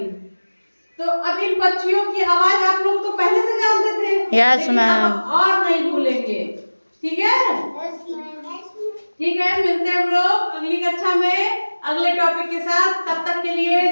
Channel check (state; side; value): inverted; both; correlation -1.00